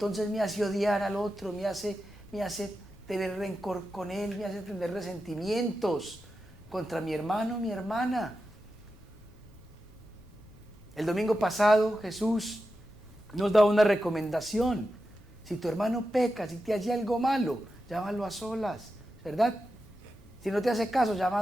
me hace odiar al otro, me hace tener rencor con él, me hace tener resentimientos contra mi hermano, mi hermana. El domingo pasado Jesús nos da una recomendación. Si tu hermano peca, si te hace algo malo, llámalo a solas, ¿verdad? Si no te hace caso, llama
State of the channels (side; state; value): left; noise; rumble, 24 dB below the sound